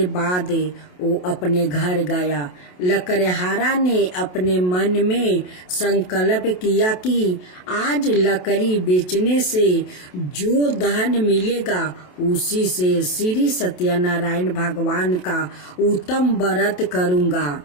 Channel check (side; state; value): right; late; 27 ms